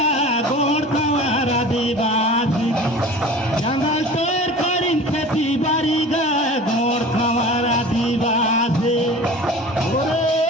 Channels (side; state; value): both; normal; correlation 0.40